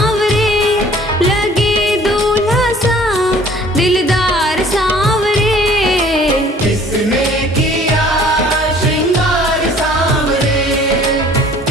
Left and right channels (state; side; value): normal; both; correlation 0.53